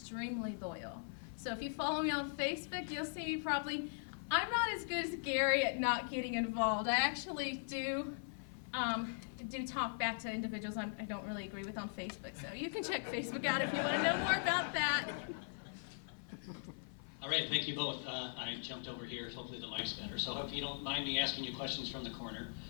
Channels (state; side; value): silent; right; 51 dB below the other